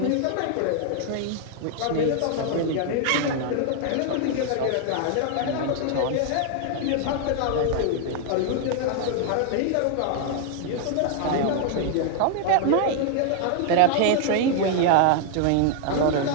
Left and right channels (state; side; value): different; both; correlation 0.00